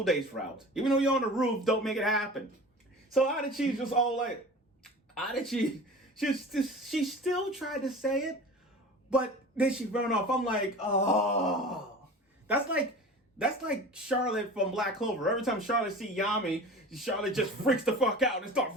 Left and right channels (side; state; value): both; normal; correlation 0.38